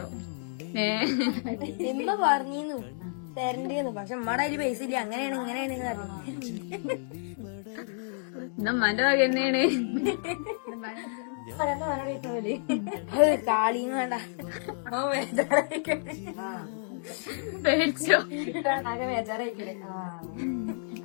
ഇമ്മ പറഞ്ഞിരുന്നു തരണ്ടേന്ന്, പക്ഷെ ഉമ്മയുടെ അതില് പൈസ ഇല്ല. അങ്ങനെയാണ് ഇങ്ങനെയാണ് പറഞ്ഞു. ഉമ്മാന്റെ വക തന്നെയാണ്. കാളിയും വേണ്ട. പേടിച്ചോ? ബേജാറായിക്കണേ.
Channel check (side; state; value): right; silent; digital silence